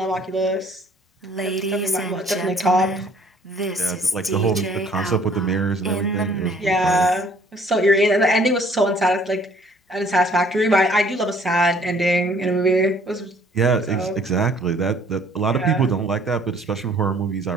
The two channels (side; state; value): both; normal; correlation 0.58